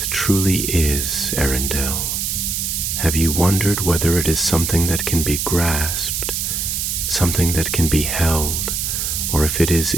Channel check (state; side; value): noise; right; hiss, 1 dB below the sound